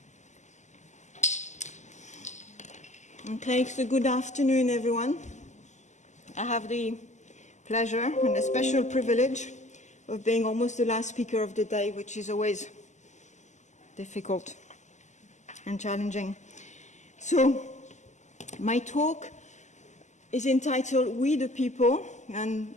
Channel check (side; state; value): right; late; 0.34 ms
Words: Okay, so good afternoon, everyone. I have the pleasure and a special privilege of being almost the last speaker of the day, which is always difficult and challenging. So, my talk is entitled We the People, and